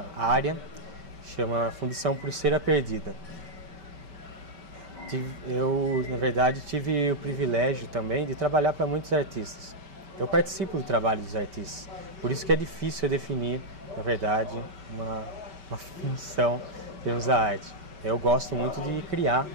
área que chama Fundição Pulseira Perdida. Eu, na verdade, tive o privilégio também de trabalhar para muitos artistas. Eu participo do trabalho dos artistas, por isso que é difícil definir, na verdade, uma função em termos da arte. Eu gosto muito de criar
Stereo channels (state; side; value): late; left; 5.2 ms